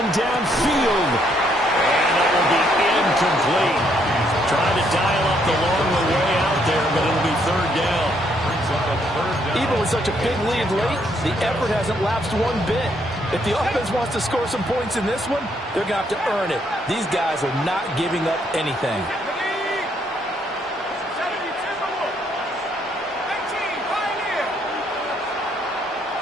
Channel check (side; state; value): both; normal; correlation 0.71